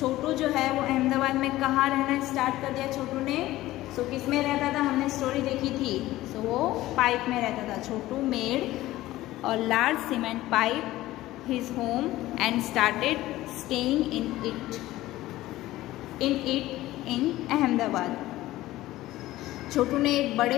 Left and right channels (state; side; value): quieter; right; 16.3 dB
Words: जो है वो अहमदाबाद में कहाँ रहना स्टार्ट कर दिया छोटू ने? सो किस में रहता था? हमने स्टोरी देखी थी, सो वो पाइप में रहता था। Chhotu made our large cement pipe his home and started staying in Ahmedabad, Chhotu ने एक